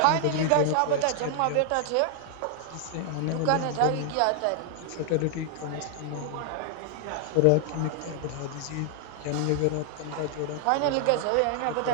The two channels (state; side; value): different; both; correlation 0.00